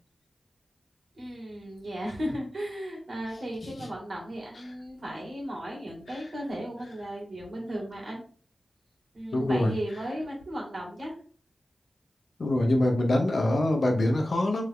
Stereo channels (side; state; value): both; normal; correlation 0.94